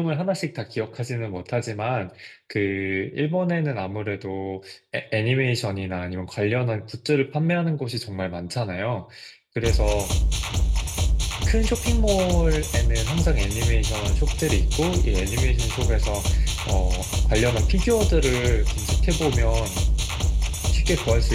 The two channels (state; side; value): identical; both; correlation 1.00